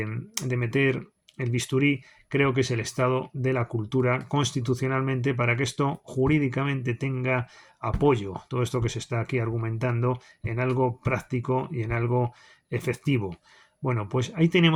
meter el bisturí creo que es el estado de la cultura constitucionalmente para que esto jurídicamente tenga apoyo, todo esto que se está aquí argumentando, en algo práctico y en algo efectivo. Bueno, pues ahí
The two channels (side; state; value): both; identical; correlation 1.00